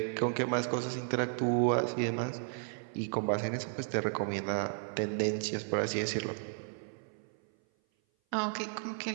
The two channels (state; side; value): silent; left; 55 dB below the other